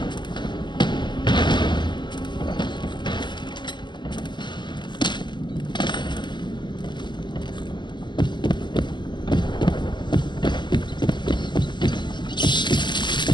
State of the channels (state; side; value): late; right; 0.22 ms